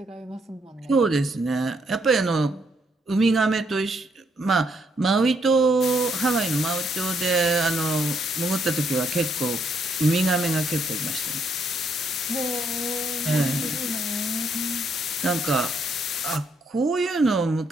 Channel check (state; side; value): normal; both; correlation 0.73